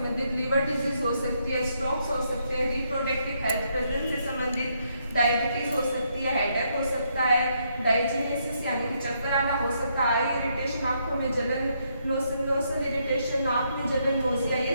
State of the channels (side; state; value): both; inverted; correlation -0.75